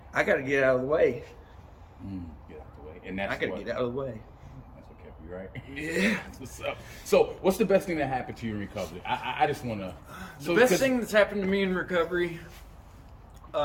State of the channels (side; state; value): both; identical; correlation 1.00